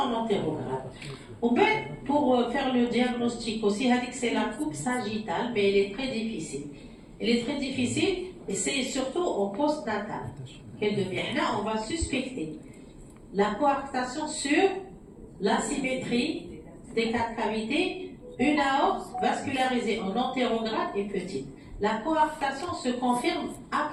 antérograde. Pour faire le diagnostic aussi, c'est la coupe sagittale, mais elle est très difficile. Elle est très difficile, et c'est surtout au postnatal qu'elle devient. Là, on va suspecter la coarctation sur l'asymétrie des 4 cavités, une aorte vascularisée en antérograde et petite. La coarctation se confirme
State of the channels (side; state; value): both; identical; correlation 1.00